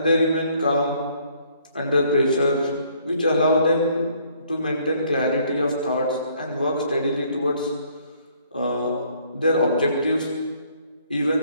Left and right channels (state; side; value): inverted; both; correlation -0.64